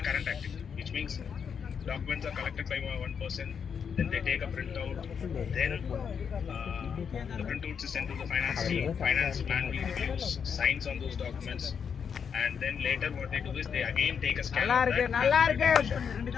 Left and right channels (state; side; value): quieter; right; 6.9 dB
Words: current activity, which means documents are collected by one person. Then they take a printout. Then the printout is sent to the finance team. Finance manually reviews, signs on those documents. And then later what they do is they again take a scan. நல்லா இருக்கு.